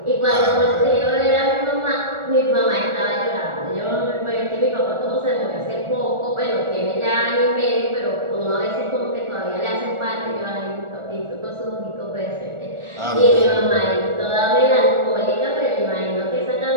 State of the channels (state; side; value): late; left; 1.4 ms